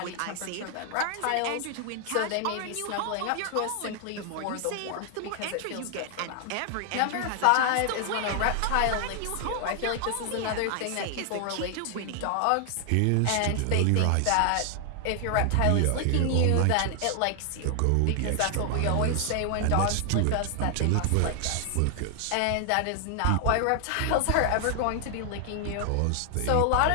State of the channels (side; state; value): both; different; correlation 0.00